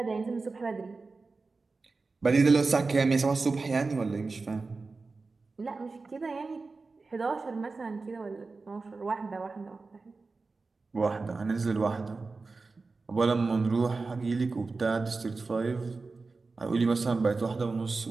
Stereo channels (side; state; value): left; quieter; 4.0 dB